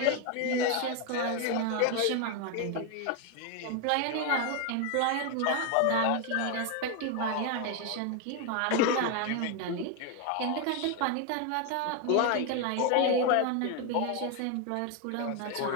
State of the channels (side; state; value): both; different; correlation 0.01